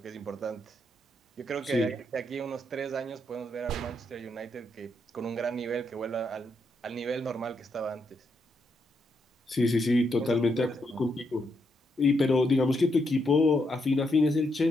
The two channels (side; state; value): both; normal; correlation 0.79